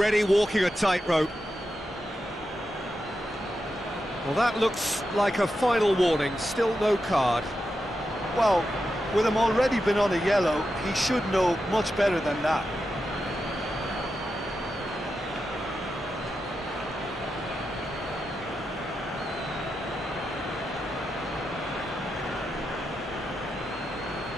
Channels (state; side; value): normal; both; correlation 0.88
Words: walking a tightrope. Well, that looks like a final warning. Still no card. Well, with him already been on a yellow, he should know much better than that.